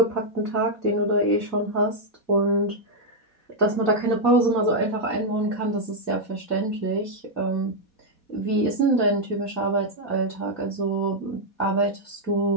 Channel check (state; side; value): late; right; 4.2 ms